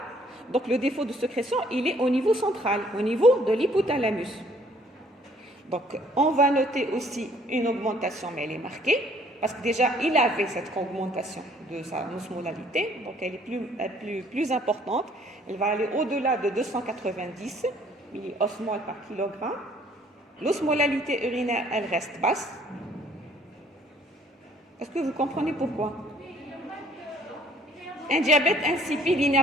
donc le défaut de sécrétion, il est au niveau central, au niveau de l'hypothalamus. Donc on va noter aussi une augmentation, mais elle est marquée, parce que déjà il avait cette augmentation de sa osmolalité, donc elle est plus importante, elle va aller au-delà de 290 milliosmoles par kilogramme. L'osmolalité urinaire, elle reste basse. Est-ce que vous comprenez pourquoi? Un diabète insipide, il n'a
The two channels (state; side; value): normal; both; correlation 0.60